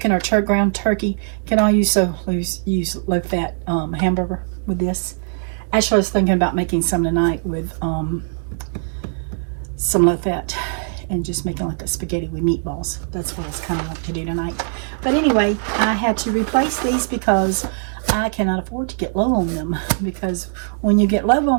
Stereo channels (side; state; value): left; silent; 65 dB below the other